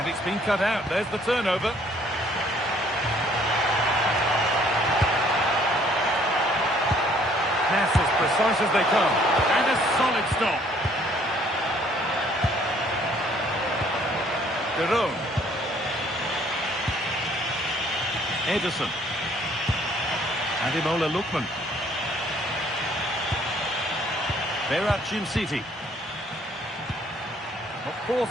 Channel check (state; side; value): normal; both; correlation 0.61